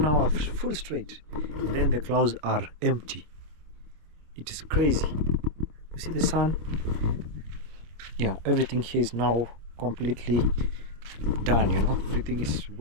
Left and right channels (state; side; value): late; left; 26 ms